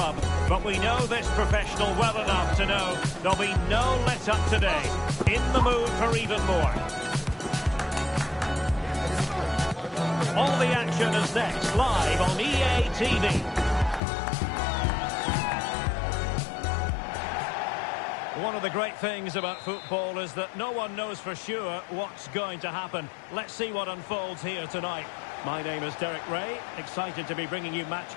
But we know this professional well enough to know there'll be no let-up today. In the mood for even more. All the action is next, live on EA TV. One of the great things about football is that no one knows for sure what's going to happen. Let's see what unfolds here tonight. My name is Derek Ray, excited to be bringing you match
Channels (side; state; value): right; drops out; at 14.0 s